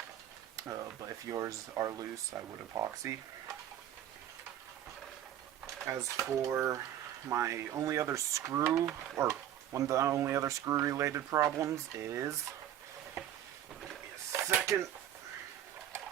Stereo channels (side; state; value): left; quieter; 11.2 dB